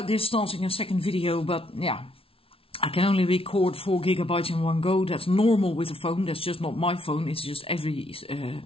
this starting a second video, but yeah, I can only record 4 GB in one go. That's normal with a phone. That's just not my phone. It's just every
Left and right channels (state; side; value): late; right; 0.26 ms